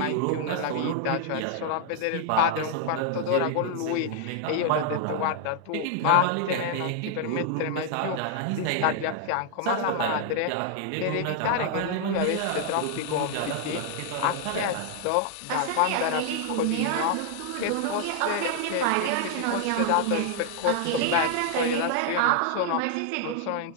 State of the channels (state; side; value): different; both; correlation 0.00